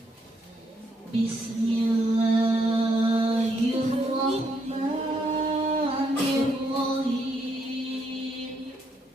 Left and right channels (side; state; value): both; normal; correlation 0.75